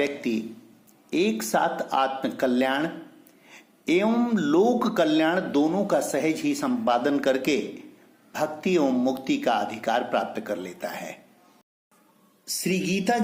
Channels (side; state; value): both; identical; correlation 1.00